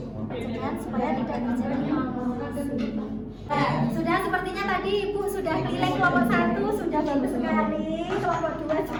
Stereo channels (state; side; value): identical; both; correlation 1.00